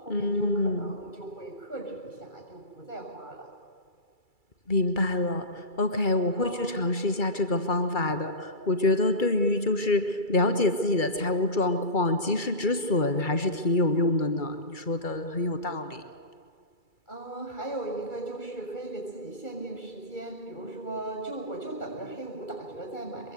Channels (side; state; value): right; late; 2.3 ms